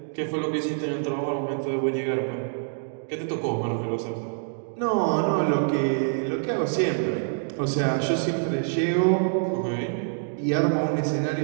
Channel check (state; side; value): silent; left; digital silence